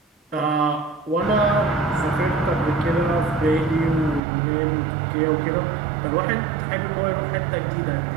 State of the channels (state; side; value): drops out; left; at 4.2 s